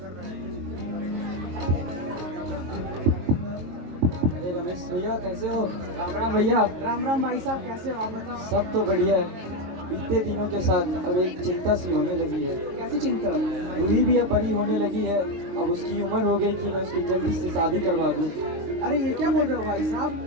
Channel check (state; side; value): late; left; 22 ms